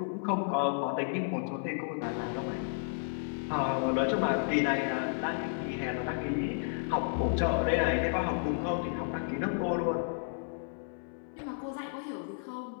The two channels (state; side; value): silent; right; 56 dB below the other